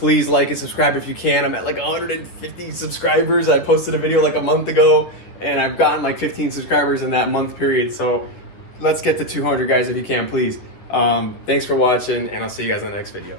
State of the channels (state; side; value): late; right; 10 ms